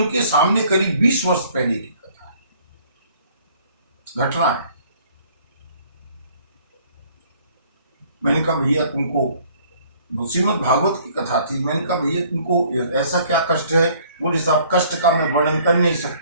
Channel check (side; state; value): both; inverted; correlation -0.58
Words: के सामने करीब 20 वर्ष पहले की कथा है, घटना है। मैंने कहा भैया तुमको, श्रीमद् भागवत की कथा थी, मैंने कहा भैया तुमको ऐसा क्या कष्ट है? बोले साहब कष्ट का मैं वर्णन कर नहीं